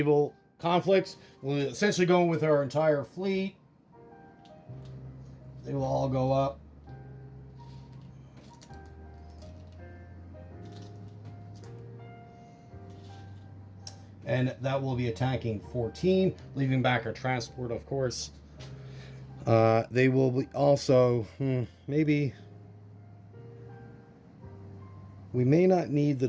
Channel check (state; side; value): identical; both; correlation 1.00